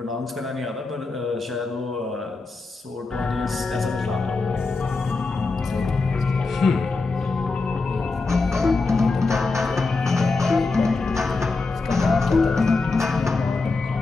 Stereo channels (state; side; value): quieter; right; 3.8 dB